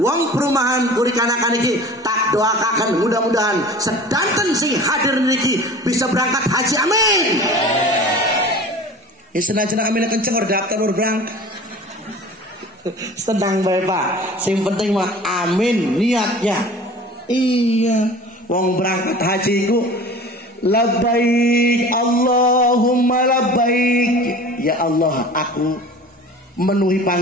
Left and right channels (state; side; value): normal; both; correlation 0.41